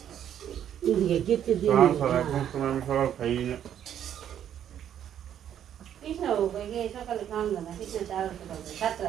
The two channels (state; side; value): quieter; left; 9.9 dB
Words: সকালে খাওয়া না কিছু